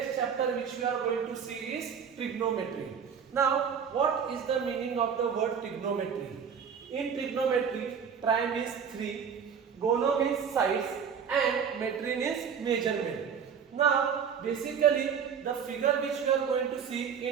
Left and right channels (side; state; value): left; quieter; 7.1 dB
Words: chapter which we are going to see is trigonometry. Now what is the meaning of the word trigonometry? In trigonometry, tri means 3, gono means sides and metry means measurement. Now basically the figure which we are going to see